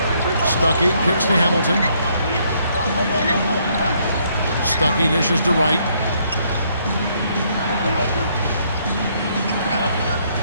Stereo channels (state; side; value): inverted; both; correlation -0.70